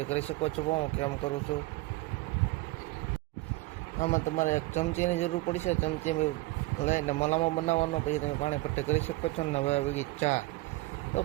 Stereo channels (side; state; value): left; quieter; 20.6 dB